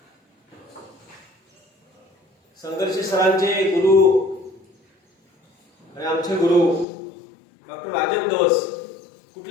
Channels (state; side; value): drops out; right; at 6.9 s